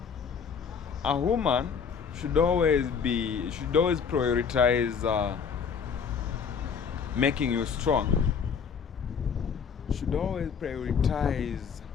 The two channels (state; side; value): quieter; right; 6.5 dB